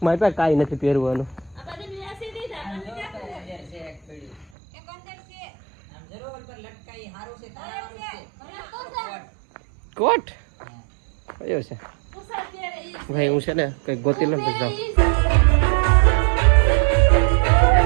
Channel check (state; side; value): drops out; left; at 4.5 s